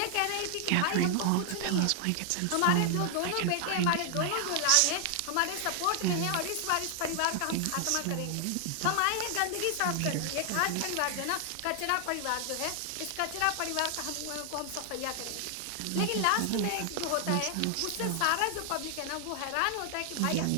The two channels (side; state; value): both; different; correlation 0.00